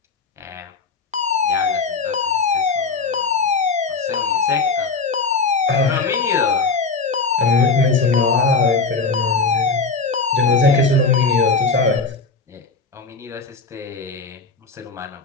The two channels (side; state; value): right; quieter; 4.4 dB